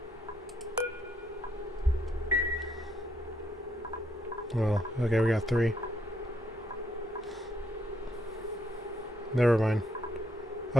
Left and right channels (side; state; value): both; normal; correlation 0.74